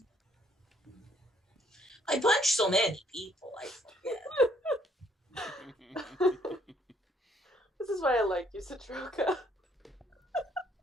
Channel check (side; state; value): both; normal; correlation 0.66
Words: I punched so many people, I forget. This is why I like you, Citroka.